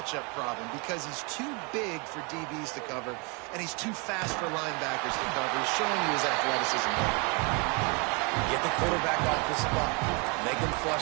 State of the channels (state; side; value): quieter; left; 31.8 dB